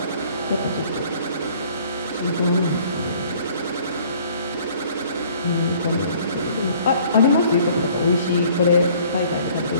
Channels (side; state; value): both; inverted; correlation -0.56